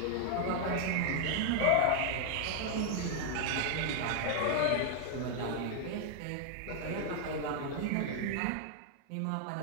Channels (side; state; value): both; different; correlation 0.00